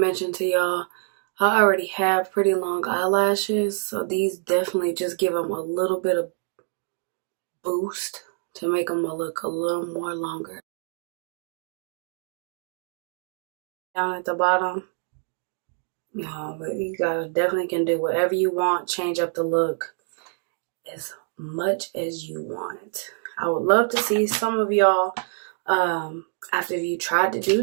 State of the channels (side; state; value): left; silent; 56 dB below the other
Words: to y'all, I already have pretty long eyelashes, so these definitely just give them a little bit of boost to make them look a little more longer. Down at the bottom, no, but you guys definitely can do whatever you want, change up the look as much as you want. I would love to see some of y'all after you tried to